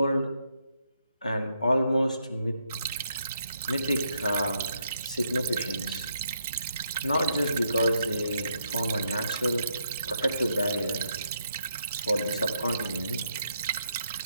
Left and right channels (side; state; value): both; inverted; correlation -0.77